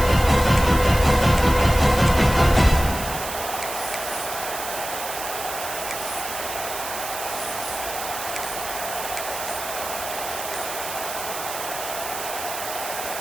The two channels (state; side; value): noise; right; hiss, 7 dB below the sound